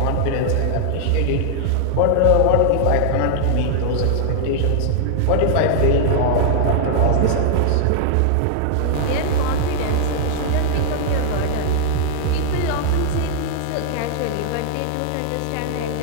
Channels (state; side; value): different; both; correlation -0.01